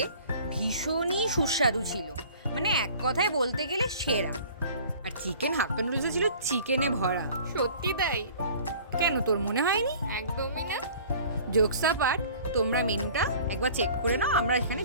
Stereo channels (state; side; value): inverted; both; correlation -0.48